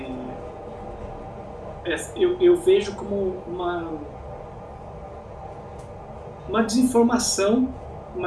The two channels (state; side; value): identical; both; correlation 1.00